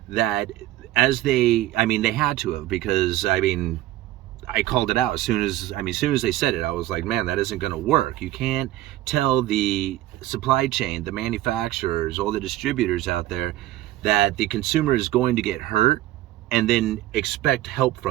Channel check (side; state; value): left; quieter; 15.2 dB